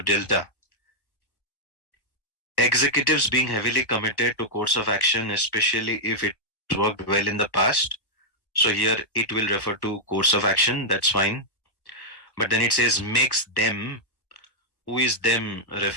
delta. Executives being heavily committed to course of action, especially if it worked well in the past. So here it will refer to course of action, that's fine. But then it says makes them. Who is them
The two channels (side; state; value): right; late; 1.1 ms